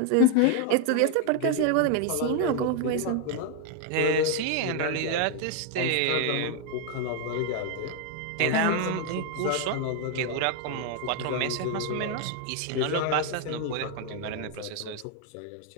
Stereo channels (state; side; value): different; both; correlation 0.00